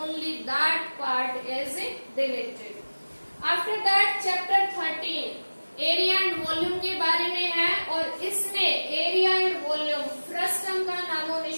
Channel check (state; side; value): inverted; both; correlation -1.00